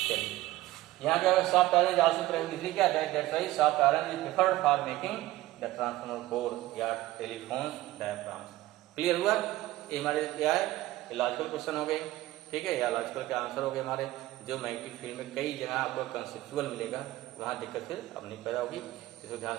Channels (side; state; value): left; quieter; 16.8 dB